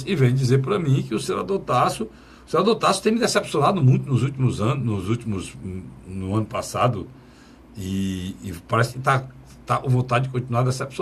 que vêm dizer para mim que o senador Tasso tem me decepcionado muito nos últimos anos, no ano passado, e parece que está com vontade de continuar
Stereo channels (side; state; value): both; identical; correlation 1.00